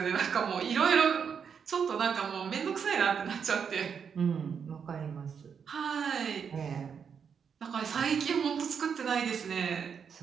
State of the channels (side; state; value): left; quieter; 6.8 dB